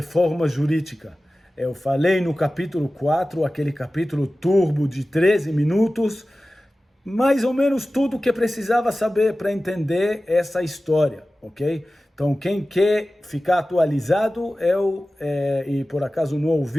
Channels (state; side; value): normal; both; correlation 0.96